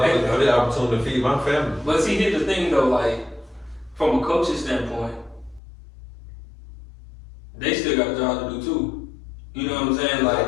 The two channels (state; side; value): drops out; right; at 5.6 s